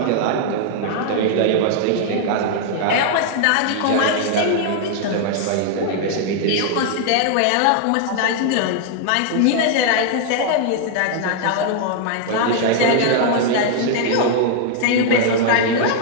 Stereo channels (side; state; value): both; different; correlation 0.00